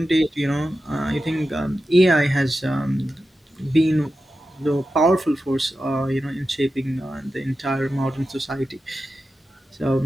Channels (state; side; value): normal; both; correlation 0.91